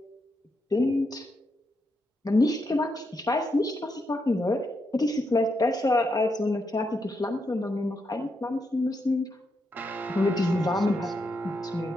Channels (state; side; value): normal; both; correlation 0.82